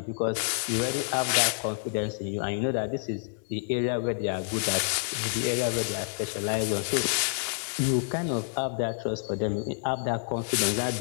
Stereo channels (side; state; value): right; silent; digital silence